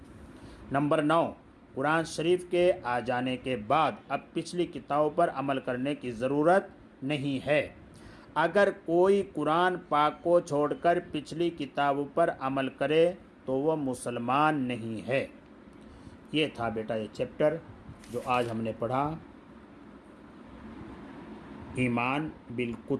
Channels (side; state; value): both; identical; correlation 1.00